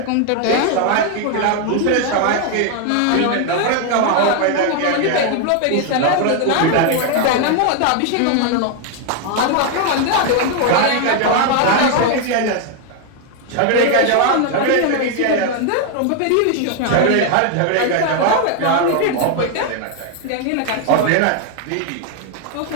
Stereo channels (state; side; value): different; both; correlation 0.01